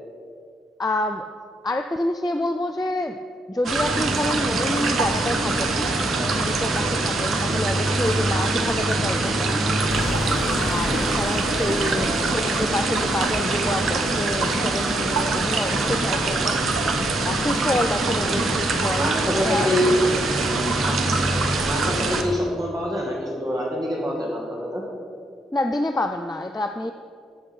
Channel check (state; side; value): normal; both; correlation 0.75